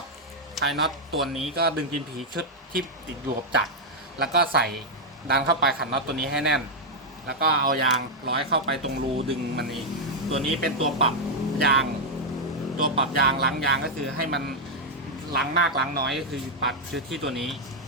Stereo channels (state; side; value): normal; both; correlation -0.02